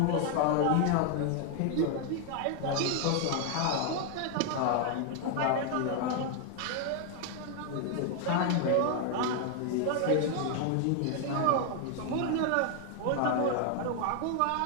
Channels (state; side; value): different; both; correlation 0.00